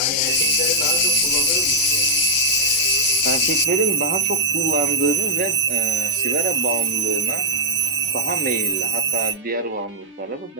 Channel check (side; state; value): both; normal; correlation 0.00